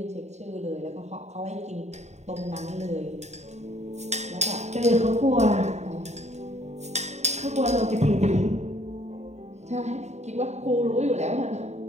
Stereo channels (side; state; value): left; late; 0.32 ms